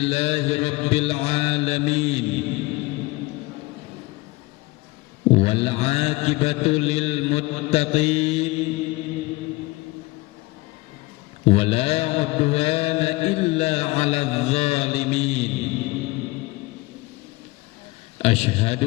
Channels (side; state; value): right; quieter; 21.9 dB